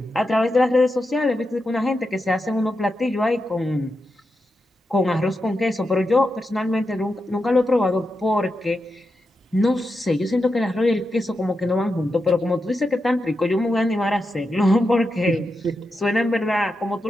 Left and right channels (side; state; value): both; normal; correlation 0.88